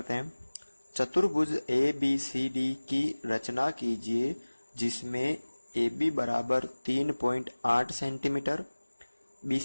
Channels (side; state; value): both; inverted; correlation -1.00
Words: हैं। चतुर्भुज ए बी सी डी की रचना कीजिए जिसमें ए बी बराबर 3.8 सेंटीमीटर, बी